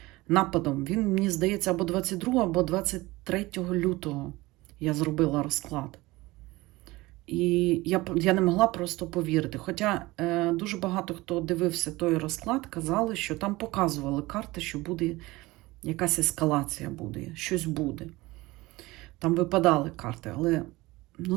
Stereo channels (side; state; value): left; quieter; 20.4 dB